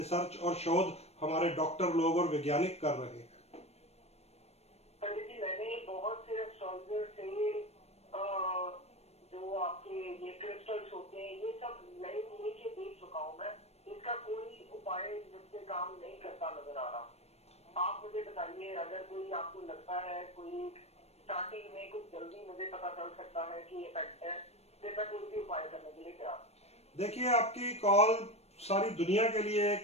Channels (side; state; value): right; late; 0.31 ms